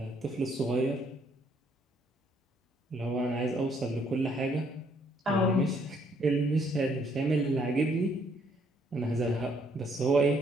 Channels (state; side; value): normal; both; correlation 0.68